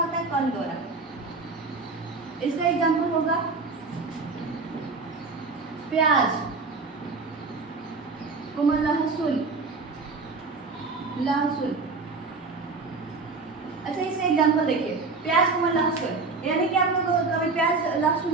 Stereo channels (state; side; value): quieter; left; 4.1 dB